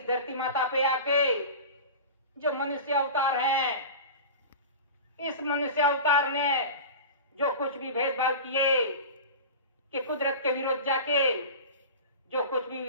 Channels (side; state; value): both; inverted; correlation -0.31